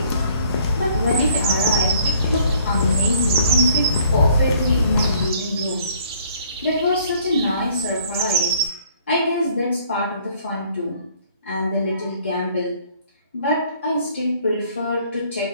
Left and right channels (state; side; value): inverted; both; correlation -0.59